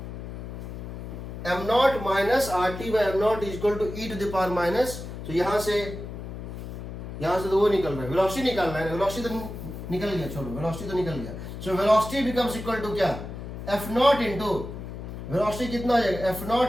M naught minus are T by M naught is equal to E to the power minus, तो यहां से तो वो निकल रहा है, velocity निकालना है, वेलोसिटी तो निकल गया, छोड़ो वेलोसिटी तो निकल गया। So velocity becomes equal to क्या? एफ नॉट इंटू वेलोसिटी कितना हो जाएगा? F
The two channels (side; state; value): left; noise; hum, 9 dB below the sound